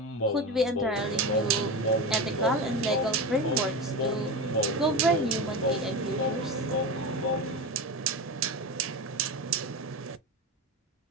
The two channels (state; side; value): normal; both; correlation 0.23